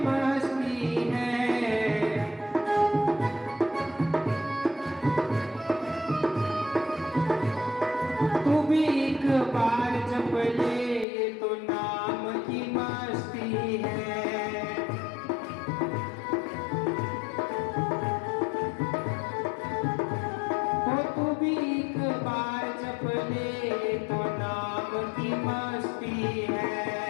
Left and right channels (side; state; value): right; drops out; at 11.1 s